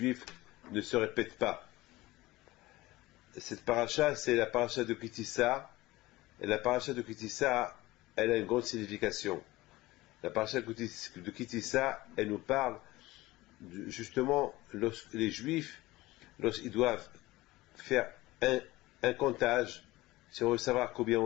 ne se répète pas. Cette paracha, c'est la paracha de Kitissa, et la paracha de Kitissa, elle a une grande signification. La paracha de Kitissa, elle nous parle justement les Juifs, lorsqu'ils doivent faire un comptage, si on veut savoir combien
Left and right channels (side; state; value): right; quieter; 19.0 dB